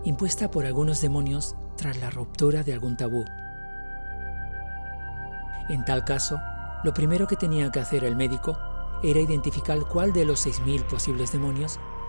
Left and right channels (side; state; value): both; inverted; correlation -1.00